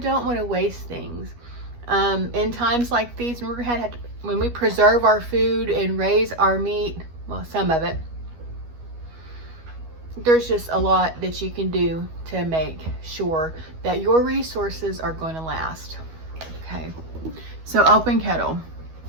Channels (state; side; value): late; left; 12 ms